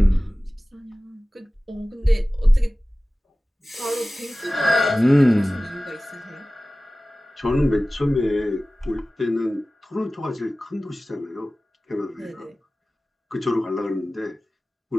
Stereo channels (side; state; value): both; normal; correlation 0.97